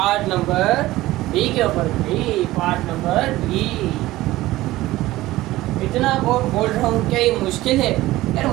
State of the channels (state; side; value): quieter; left; 17.2 dB